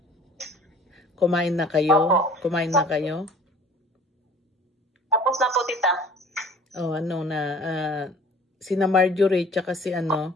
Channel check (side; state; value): both; normal; correlation 0.49